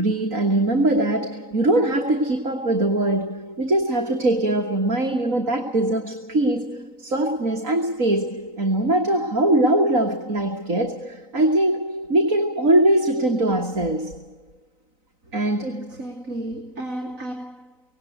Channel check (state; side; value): late; left; 3.9 ms